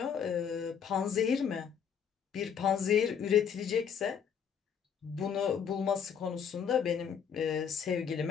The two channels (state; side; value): quieter; right; 7.5 dB